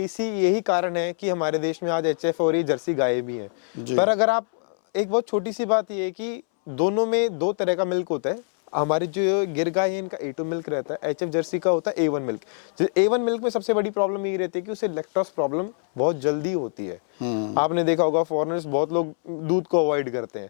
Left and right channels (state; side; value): silent; right; 62 dB below the other